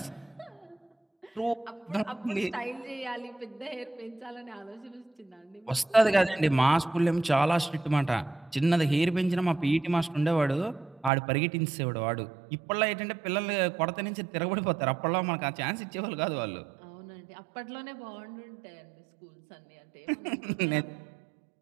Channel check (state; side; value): drops out; left; at 11.1 s